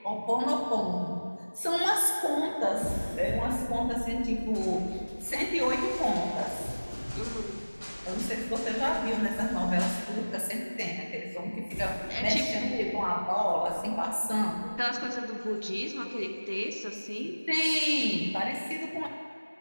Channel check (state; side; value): inverted; both; correlation -1.00